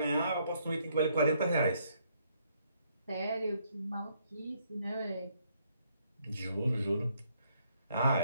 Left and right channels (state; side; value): inverted; both; correlation -0.70